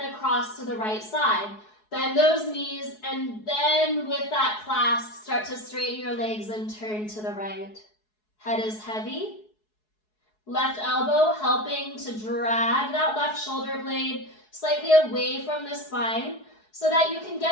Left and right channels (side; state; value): right; late; 4.7 ms